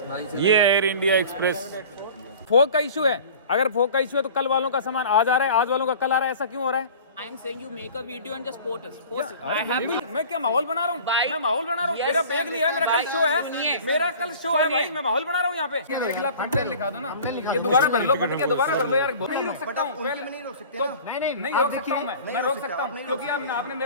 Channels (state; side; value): inverted; both; correlation -0.42